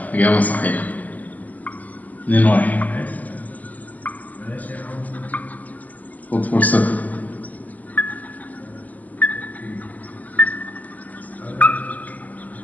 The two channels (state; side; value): late; right; 0.079 ms